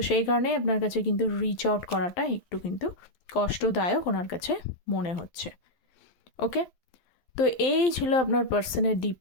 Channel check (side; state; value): right; late; 12 ms